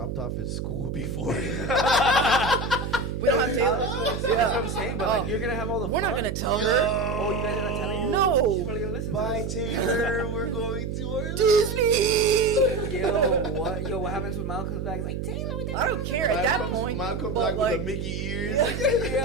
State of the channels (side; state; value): right; noise; hum, 4 dB below the sound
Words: off at school before. We don't have Taylor. That's what I'm saying, but like, Oh. you're gonna have all the We're not fun. gonna tell her. Oh, you guys are not telling her? No. She's probably gonna listen Bye, to this. Taylor. We're going to Orlando. Disney. Yo, what happens when Mal comes back? He's like, Taylor, what the I don't care at that point. Mom comes but back like, with the Mickey ears.